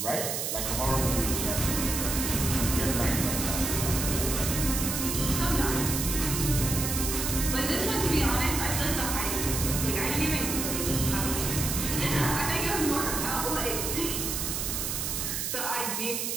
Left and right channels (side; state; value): right; noise; hiss, 2 dB below the sound